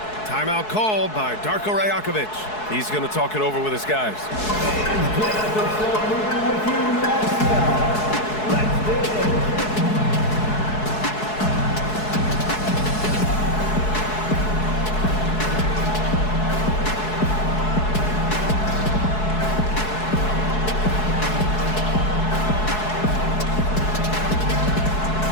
Timeout called by Darko Rajakovic. He's going to talk it over with his guys.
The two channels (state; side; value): late; right; 4.7 ms